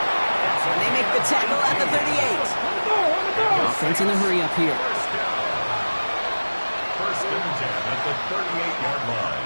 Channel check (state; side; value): inverted; both; correlation -1.00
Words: And they make the tackle at the 38. Offense in the hurry-up here. 1st and 10 at the 38-yard